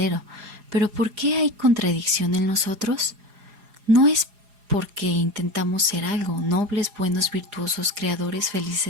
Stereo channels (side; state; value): left; late; 4.8 ms